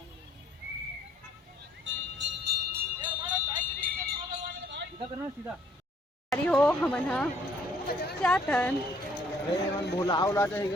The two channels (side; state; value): both; normal; correlation 0.63